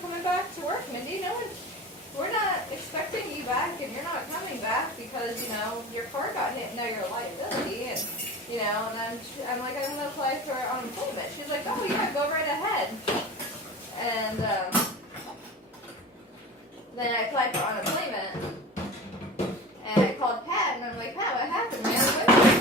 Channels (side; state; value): both; normal; correlation 0.35